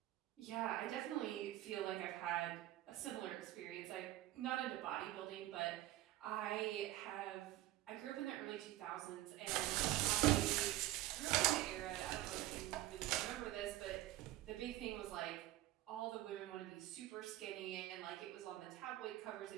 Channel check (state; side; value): quieter; left; 15.5 dB